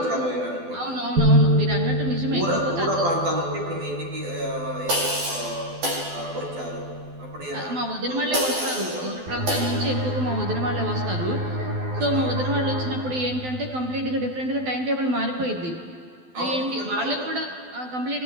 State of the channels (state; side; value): late; left; 12 ms